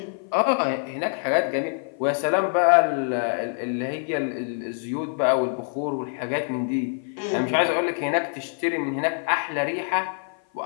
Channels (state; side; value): silent; right; 57 dB below the other